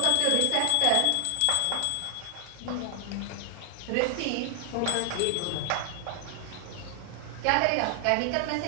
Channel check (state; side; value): different; both; correlation 0.00